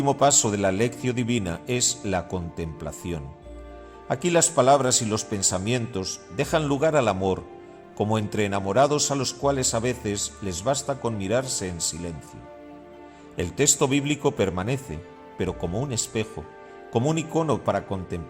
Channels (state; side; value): identical; both; correlation 1.00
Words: paso de la lección divina es la contemplación. Aquí las palabras y los pensamientos dejan lugar al amor, como entre enamorados a los cuales a veces les basta con mirarse en silencio. El texto bíblico permanece, pero como un espejo, como un icono para